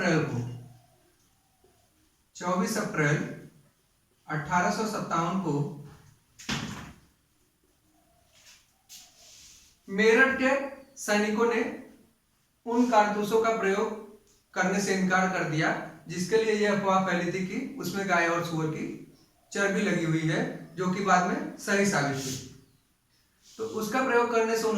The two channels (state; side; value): identical; both; correlation 1.00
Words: 1857 को मेरठ के सैनिकों ने उन कारतूसों का प्रयोग करने से इनकार कर दिया जिसके लिए यह अफवाह फैली थी कि उसमें गाय और सूअर की चर्बी लगी हुई है, जो कि बाद में सही साबित हुई। तो उसका प्रयोग करने से